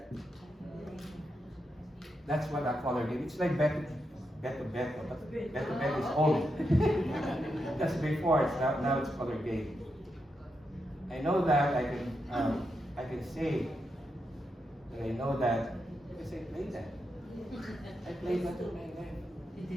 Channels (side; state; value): both; normal; correlation 0.85